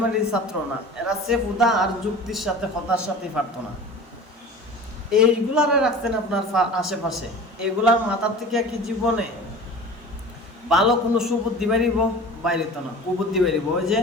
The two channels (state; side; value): normal; both; correlation 0.39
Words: ছাত্র না, এরা সেফুদা আর যুক্তির সাথে হতার সাথে পারত না। এইগুলারে রাখছেন আপনার আশেপাশে, এগুলার মাথার থেকে কি জীবনে ভালো কোনো সুবুদ্ধি বাড়িব? বাইরে তো না, কুবুদ্ধি বাড়িব। ওই যে